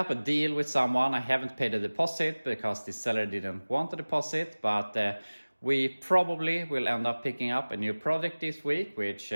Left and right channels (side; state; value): both; inverted; correlation -1.00